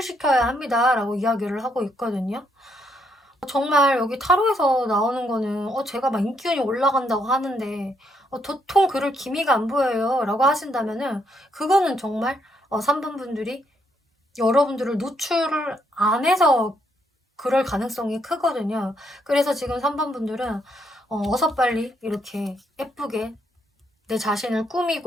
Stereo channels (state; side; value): normal; both; correlation 0.74